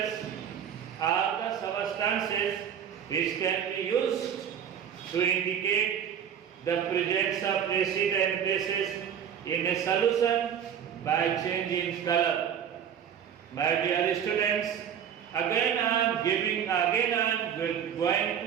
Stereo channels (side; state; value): left; quieter; 8.6 dB